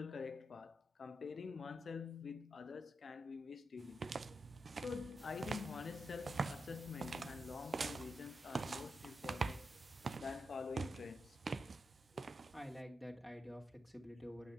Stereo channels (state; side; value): normal; both; correlation 0.86